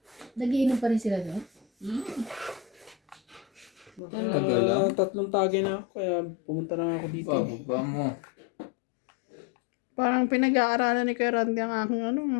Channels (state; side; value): drops out; right; at 4.0 s